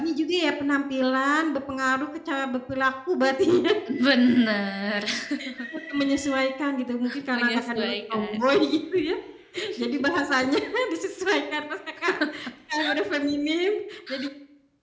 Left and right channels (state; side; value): identical; both; correlation 1.00